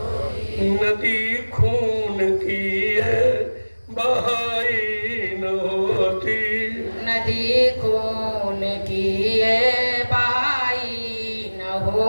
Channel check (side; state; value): both; inverted; correlation -1.00